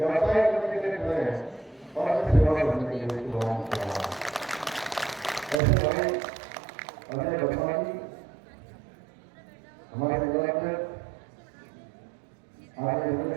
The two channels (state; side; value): drops out; left; at 5.6 s